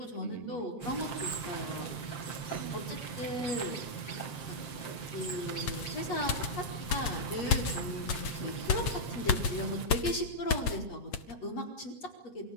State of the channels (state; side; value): late; right; 8.7 ms